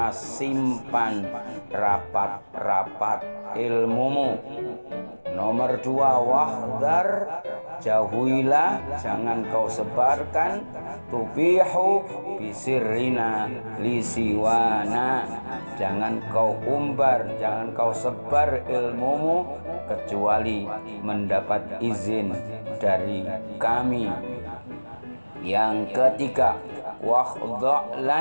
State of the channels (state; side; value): inverted; both; correlation -1.00